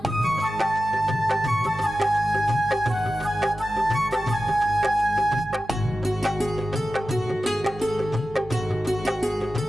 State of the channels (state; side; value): normal; both; correlation 0.93